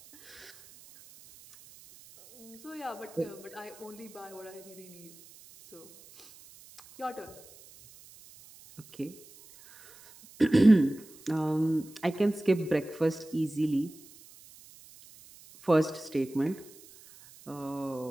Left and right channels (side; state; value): right; noise; hiss, 22 dB below the sound